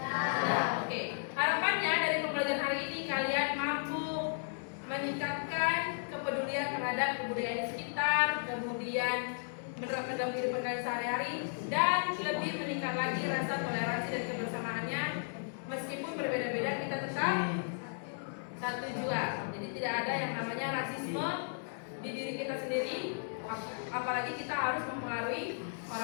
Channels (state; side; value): silent; right; digital silence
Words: Oke. Harapannya dari pembelajaran hari ini kalian mampu meningkatkan kepedulian terhadap kebudayaan di sekitar, kemudian menerapkan dalam kehidupan kalian sehari-hari, dan lebih meningkat lagi rasa toleransi dan kebersamaannya. Meskipun berbeda-beda, kita tetap satu jua. Jadi tidak ada yang namanya rasisme di diri kita sendiri, apalagi kita harus mempengaruhi